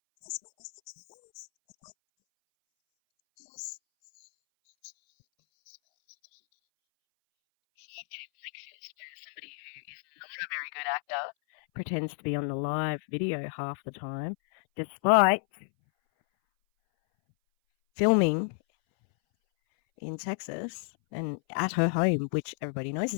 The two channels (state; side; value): silent; right; 57 dB below the other